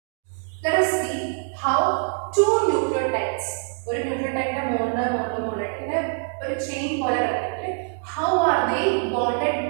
Let us see how two nucleotides, one nucleotide monomer, chain how are they bonded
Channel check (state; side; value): silent; left; 61 dB below the other